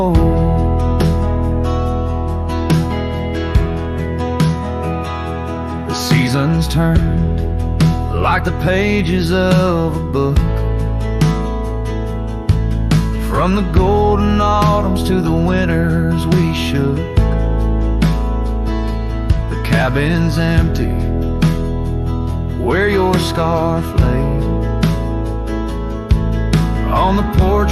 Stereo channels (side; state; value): both; identical; correlation 1.00